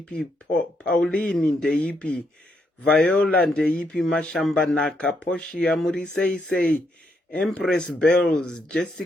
Pauline ndeipi, Viola ndeipi, Mashamba Naka, Poshia Murisei, Empress Bells,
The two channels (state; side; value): normal; both; correlation 0.77